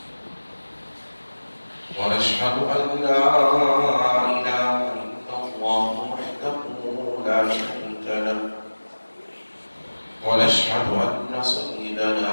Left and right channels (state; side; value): inverted; both; correlation -1.00